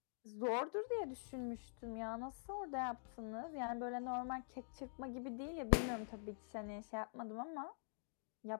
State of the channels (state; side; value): silent; right; digital silence